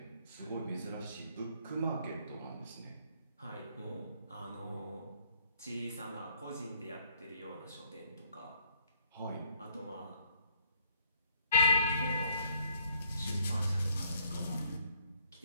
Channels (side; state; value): both; inverted; correlation -0.67